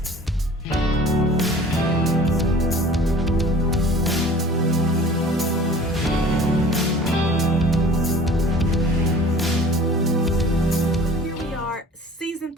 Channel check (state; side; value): normal; both; correlation 0.46